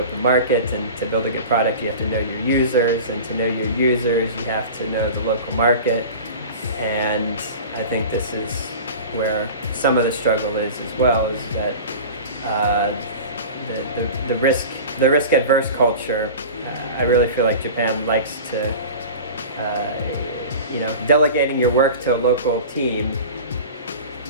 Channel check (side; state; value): both; inverted; correlation -0.35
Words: market, and to build a good product, you have to know your users, and to know your users, you have to know the local market. And I think this is where some of the struggle is as well, is that the risk adverse culture. I really feel like Japan likes to, you know, delegating your work to a local team